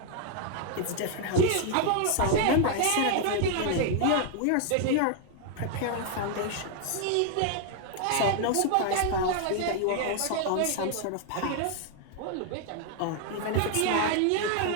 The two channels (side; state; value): both; different; correlation 0.00